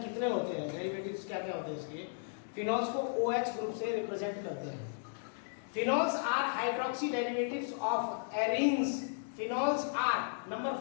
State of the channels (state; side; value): silent; right; digital silence